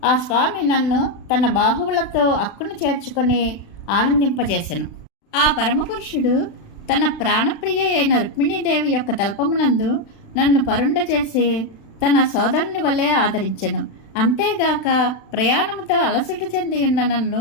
ఆ స్వామి నన్ను తన బాహువులతో అక్కును చేర్చుకొని ఆనందింపజేసెను. ఆ పరమపురుషుడు తన ప్రాణప్రియ అయిన రుక్మిణీదేవి యొక్క తల్పమునందు నన్ను పరుండ చేసి తన సోదరుని వలె ఆదరించెను. అంతేగాక ప్రయాణముతో అలసట చెంది ఉన్న నన్ను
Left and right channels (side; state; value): right; late; 36 ms